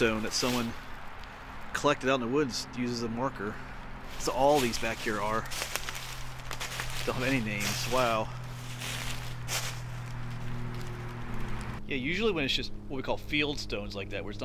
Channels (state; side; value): identical; both; correlation 1.00